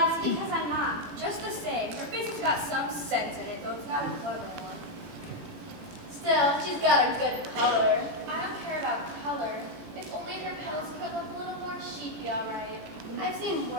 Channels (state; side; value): late; left; 17 ms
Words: because I'm not. Just the same, her face has got some sense in it, though it's not a clever one. Still, she's got a good color. I don't care about color. If only her petals could look a little more, she'd be all right. I've seen